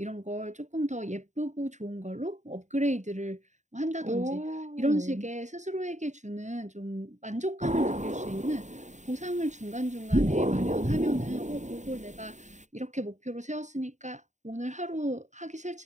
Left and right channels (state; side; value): late; left; 0.34 ms